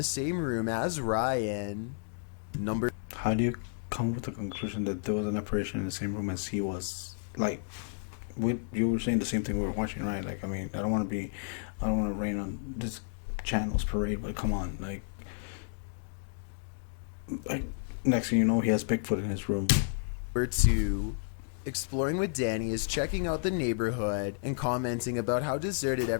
same room as Ryan. Number... How do you come with the conclusion that there was an apparition in the same room as he was? Like, you were saying the same thing we were watching, right? Like, I mean, I don't want to rain on this channel's parade, but come on, like, next thing you know, he has Bigfoot in his room. Number 2. Exploring with Danny is checking out the neighborhood and commenting about how deserted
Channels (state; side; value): silent; right; digital silence